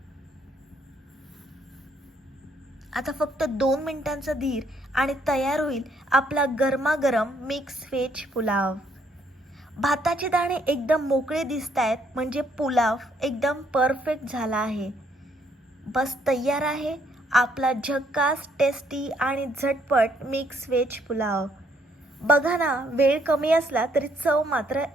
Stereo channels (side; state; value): both; normal; correlation 0.69